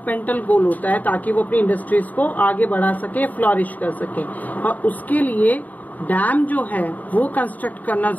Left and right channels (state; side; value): late; right; 0.078 ms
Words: गोल होता है ताकि वो अपनी इंडस्ट्रीज को आगे बढ़ा सके, फ्लॉरिश कर सके, और उसके लिए डैम जो है वो कंस्ट्रक्ट करना